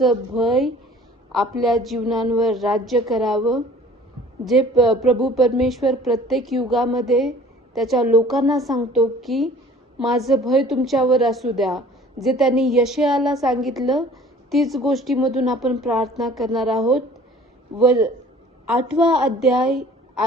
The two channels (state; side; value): normal; both; correlation 0.49